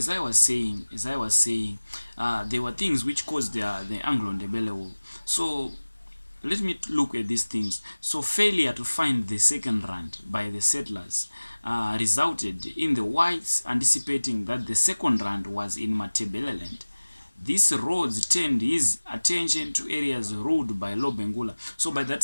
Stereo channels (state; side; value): inverted; both; correlation -1.00